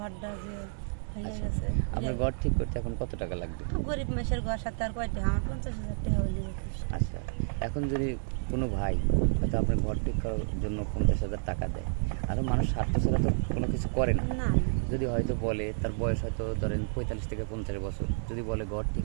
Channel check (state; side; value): silent; left; 58 dB below the other